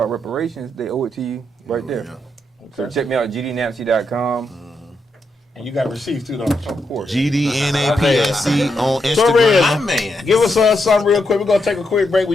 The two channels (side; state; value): both; normal; correlation 0.82